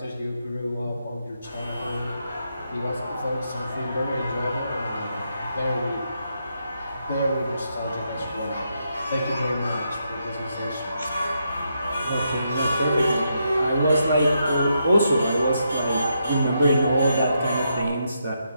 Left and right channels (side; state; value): both; inverted; correlation -0.81